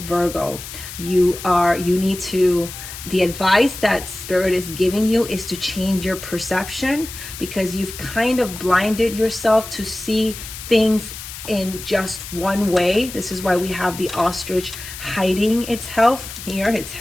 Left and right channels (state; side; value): noise; left; hiss, 11 dB below the sound